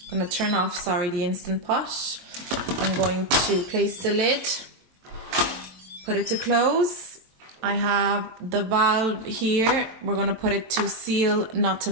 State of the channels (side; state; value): left; late; 22 ms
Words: I'm going to turn off, the Instant Pot. I'm going to place the lid, put it to close. I have the valve here. We're going to put it to seal, not to